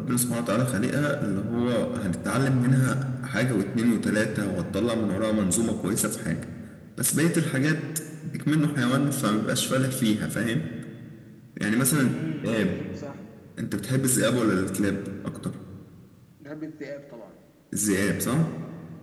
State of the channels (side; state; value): both; identical; correlation 1.00